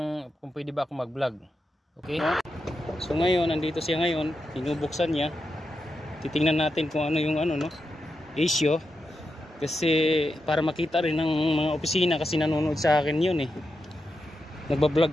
kung pwede ba ako mag-vlog. Okay? So, ngayon, nandito siya ngayon. Binubuksan niya. Titingnan natin kung ano yung issue. Kasi, para makita rin ng mga opisina kasi nanonood sa akin yun eh.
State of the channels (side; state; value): both; normal; correlation 0.87